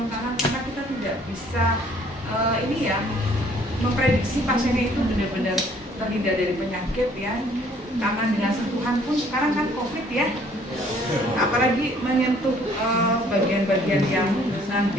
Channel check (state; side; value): normal; both; correlation 0.59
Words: tangan karena kita tidak bisa ini ya memprediksi pasiennya itu benar-benar terhindar dari penyakit ya. Tangan dengan sentuhan pun sekarang kan COVID ya. Apalagi menyentuh bagian-bagian yang